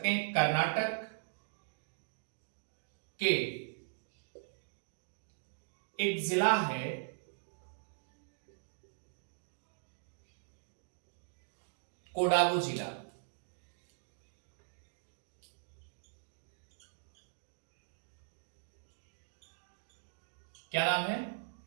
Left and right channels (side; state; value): left; silent; digital silence